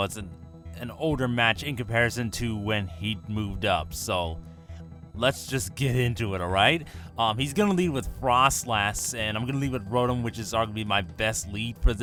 it's an older match in comparison to when he moved up, so let's just get into it, alright? He's going to lead with Frostlass, and I'm going to lead with Rotom, which is arguably my best lead for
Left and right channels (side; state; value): both; identical; correlation 1.00